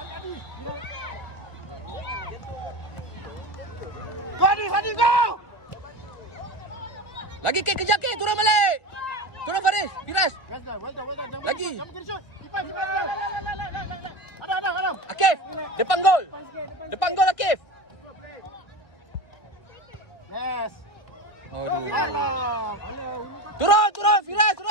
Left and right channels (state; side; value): late; right; 1.4 ms